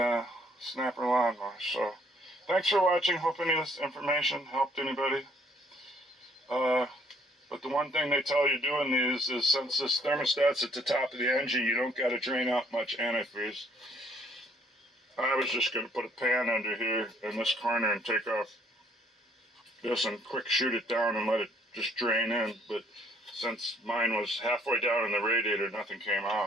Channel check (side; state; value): both; normal; correlation 0.64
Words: snapper lawnmower. So, thanks for watching. Hope any of this information helped anybody. But the one thing they tell you doing these is, since this thermostat's at the top of the engine, you don't got to drain out much antifreeze. I was just going to put a pan under here in this corner and take off this and quick shoot it down and let it just drain in, but since mine was halfway down in the radiator, nothing came